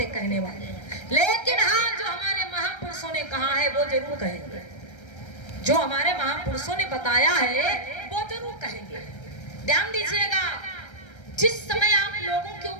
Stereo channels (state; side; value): late; right; 1.3 ms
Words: कहने वाले। लेकिन हाँ, जो हमारे महापुरुषों ने कहा है वो जरूर कहेंगे, जो हमारे महापुरुषों ने बताया है वो जरूर कहेंगे। ध्यान दीजिएगा, जिस समय आप लोगों के